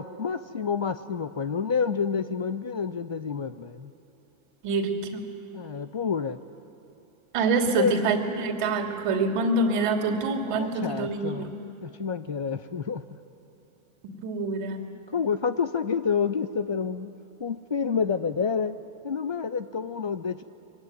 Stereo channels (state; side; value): late; left; 1.5 ms